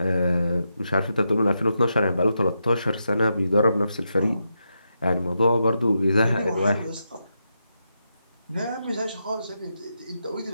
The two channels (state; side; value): inverted; both; correlation -0.85